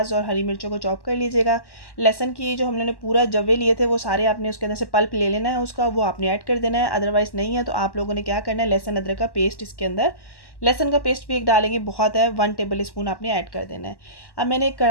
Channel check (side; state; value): right; late; 1.1 ms